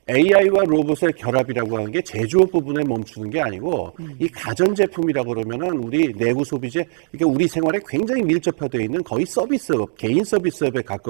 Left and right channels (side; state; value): left; silent; digital silence